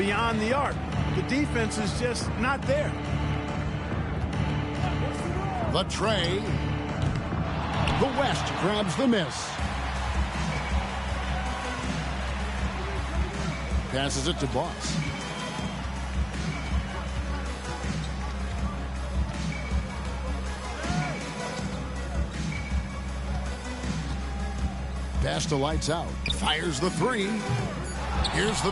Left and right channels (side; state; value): both; identical; correlation 1.00